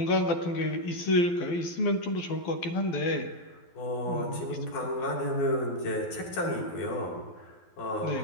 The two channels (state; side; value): late; right; 12 ms